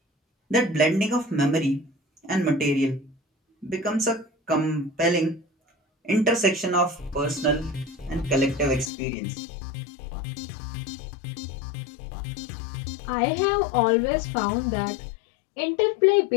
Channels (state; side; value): drops out; right; at 8.9 s